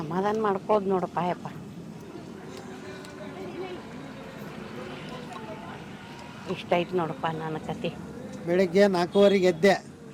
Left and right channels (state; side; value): identical; both; correlation 1.00